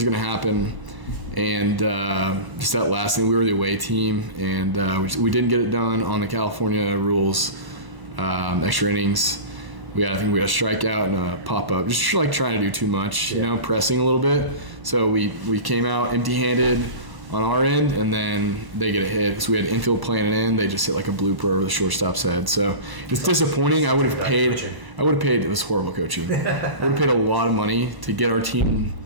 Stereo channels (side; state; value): left; late; 1.0 ms